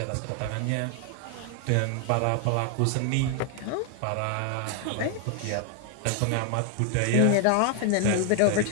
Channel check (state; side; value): different; both; correlation 0.00